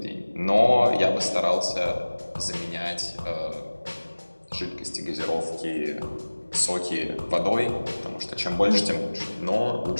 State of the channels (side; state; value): both; inverted; correlation -1.00